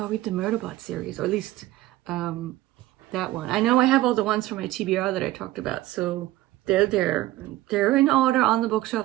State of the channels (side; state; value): left; quieter; 16.5 dB